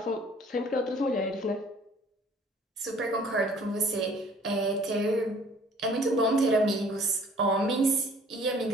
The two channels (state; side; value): normal; both; correlation 0.55